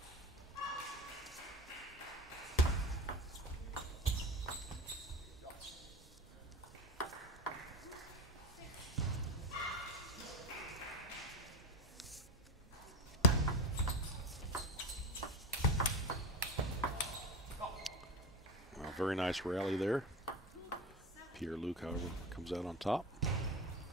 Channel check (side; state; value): both; normal; correlation 0.25